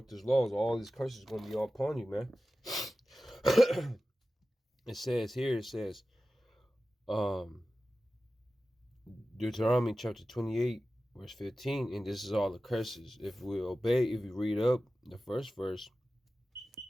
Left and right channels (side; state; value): both; normal; correlation 0.95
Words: these laws, all these curses are going to be all upon you, man. It says, Deuteronomy chapter 28, verse 15, and this is all the curses. If we obey, if we read up the first verse,